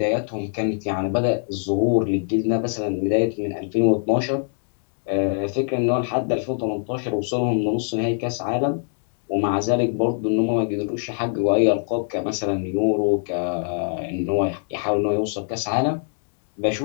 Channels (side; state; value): right; silent; digital silence